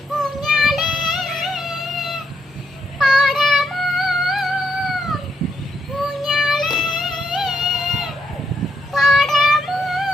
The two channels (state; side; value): normal; both; correlation 0.78